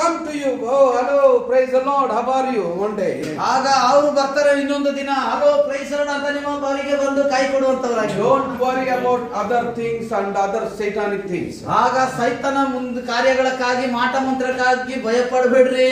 to you. Oh, hello, praise the Lord. How are you? One day. ಆಗ ಅವರು ಬರ್ತಾರೆ ಇನ್ನೊಂದು ದಿನ. ಹಲೋ ಪ್ರೈಸ್ ಲಾರ್ಡ್ ಅಂತ ನಿಮ್ಮ ಬಾರಿಗೆ ಬಂದು ಕೈ ಕೊಡುವಂತವರಾಗಿ. Don't worry about other things and other satanic things. ಆಗ ಸೈತಾನ ಮುಂದೆ ಕಾರ್ಯಗಳಕ್ಕಾಗಿ ಮಾಟ ಮಂತ್ರಕ್ಕಾಗಿ ಭಯ ಪಡಬೇಡ್ರಿ.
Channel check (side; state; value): both; identical; correlation 1.00